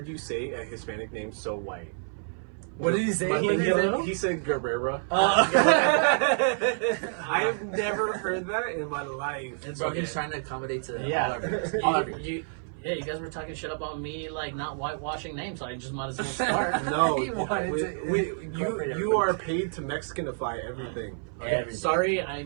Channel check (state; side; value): silent; left; 57 dB below the other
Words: you say a Hispanic name so white. What did he say? He said Guerrero. I have never heard that in my life. It's okay. He's trying to accommodate to all of you. Yeah, you guys were talking shit about me, like not whitewashing names, so I just might as well start. No, you are paid to Mexicanify everything. Okay. Sorry, I